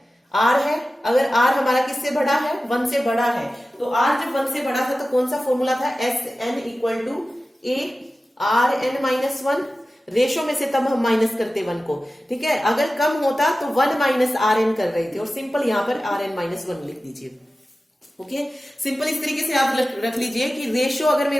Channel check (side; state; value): both; normal; correlation 0.95